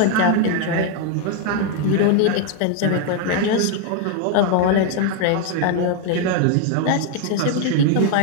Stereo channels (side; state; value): both; different; correlation 0.01